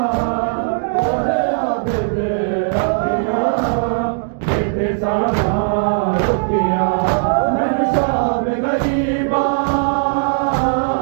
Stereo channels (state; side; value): silent; left; digital silence